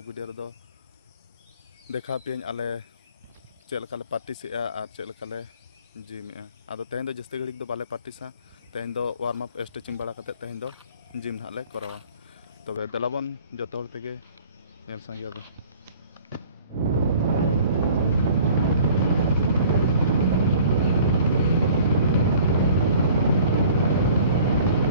वीडियो रेदो देखा पे आले चेक लेका पार्टिस और चेक लेका जिमे आदो तेहन दो जस्ती घड़ी दो बाले पार्टिसा तेहन दो वार्म अप स्ट्रेचिंग बड़ा करते तेहन दो जिम हाले करावा तबे दलाबन जो तेगे नेल संगे दो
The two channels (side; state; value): both; inverted; correlation -0.50